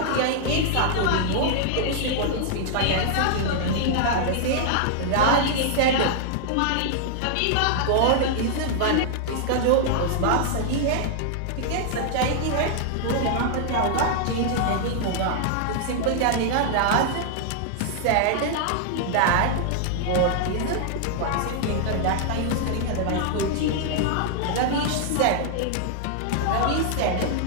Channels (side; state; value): both; different; correlation -0.01